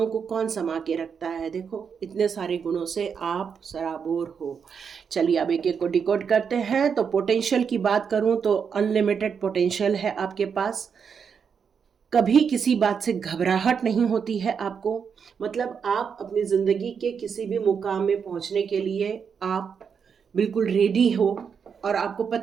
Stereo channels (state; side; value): quieter; left; 6.6 dB